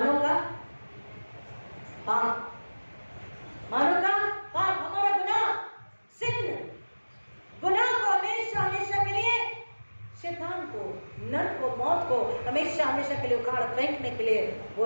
का पाप। मानव का पाप, हमारा गुनाह, सिन, गुनाह को हमेशा हमेशा के लिए, शैतान को, नरक को, मौत को हमेशा हमेशा के लिए उखाड़ फेंकने के लिए वो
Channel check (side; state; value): both; inverted; correlation -1.00